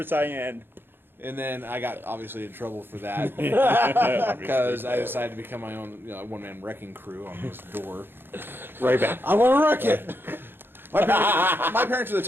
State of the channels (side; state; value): left; late; 0.10 ms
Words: Saiyan. and then I got obviously in trouble for that because I decided to become my own one-man wrecking crew on this door. right back. I want to wreck it. My parents are the